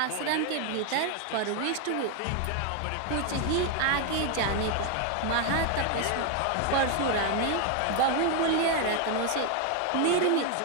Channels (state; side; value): different; both; correlation 0.01